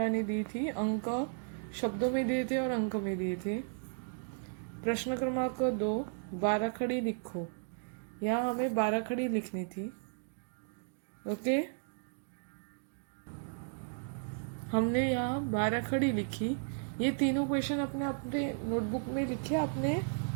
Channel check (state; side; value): silent; left; digital silence